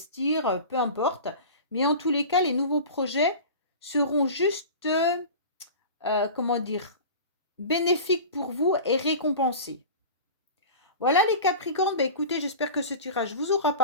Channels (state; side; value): inverted; both; correlation -0.34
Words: peu importe. Mais en tous les cas, les nouveaux projets seront juste, comment dire, bénéfiques pour vous et récompensés. Voilà les Capricornes, bah écoutez, j'espère que ce tirage vous aura